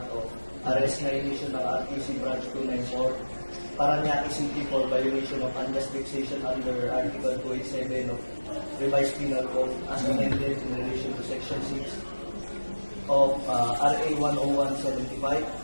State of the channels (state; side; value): inverted; both; correlation -1.00